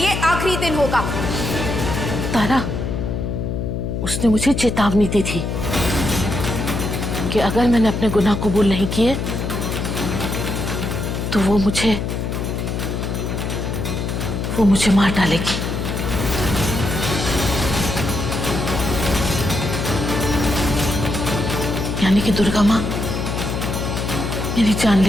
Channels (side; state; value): left; noise; hum, 2 dB below the sound